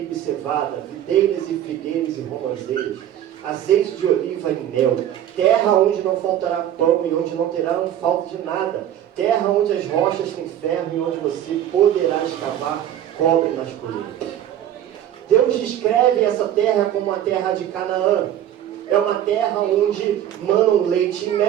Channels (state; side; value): quieter; left; 11.2 dB